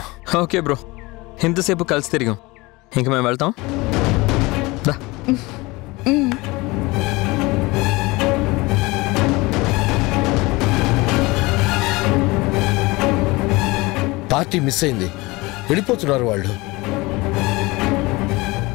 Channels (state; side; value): quieter; right; 22.8 dB